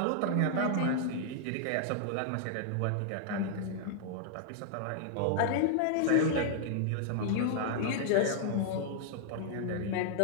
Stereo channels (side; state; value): both; different; correlation -0.01